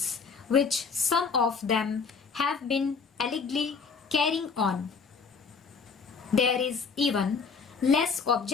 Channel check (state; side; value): quieter; right; 5.3 dB